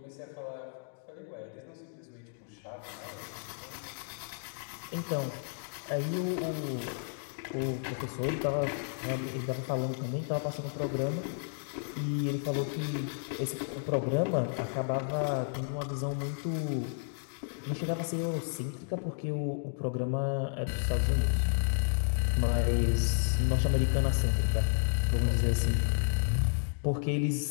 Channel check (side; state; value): right; silent; digital silence